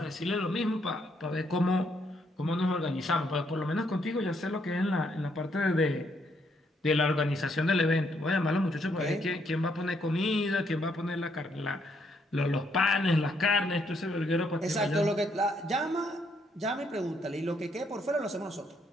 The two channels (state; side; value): normal; both; correlation 0.73